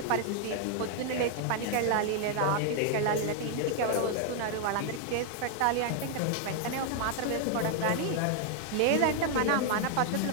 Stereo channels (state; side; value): different; both; correlation 0.00